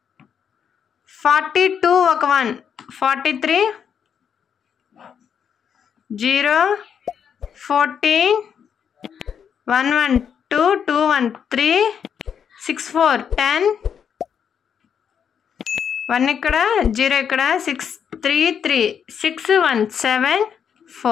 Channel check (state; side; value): quieter; right; 7.7 dB